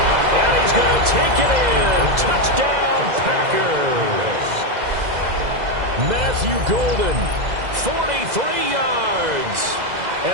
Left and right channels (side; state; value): left; late; 2.0 ms